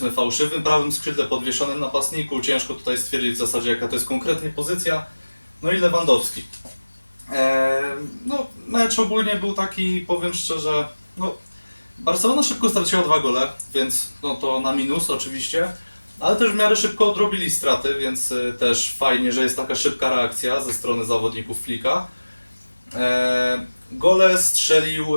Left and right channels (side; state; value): both; inverted; correlation -1.00